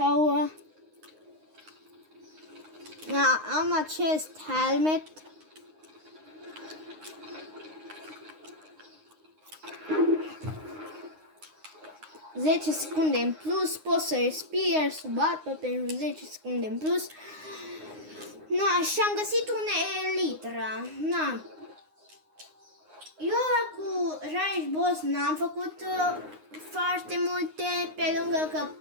am acest helmet. Zece secunde în plus, pot să respir sub apă pentru 10 secunde în plus. Și am găsit un elitră. Eu cu Rage Boss n-am făcut foarte multe, pe lângă că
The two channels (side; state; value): left; late; 9.6 ms